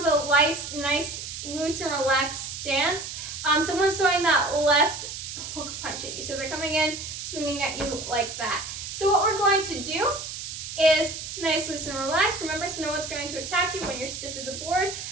a nice loose and relaxed stance. Someone's throwing that left hook punch at you. So they're coming in, swinging at you like that. So what we're going to do is nice, loose, and relaxed. Remember, so no one's going to attack you when you're stiff as a board.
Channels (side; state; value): right; noise; hiss, 8 dB below the sound